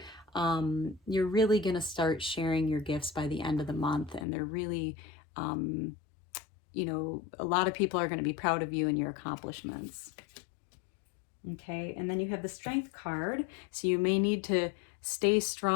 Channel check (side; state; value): right; drops out; at 4.2 s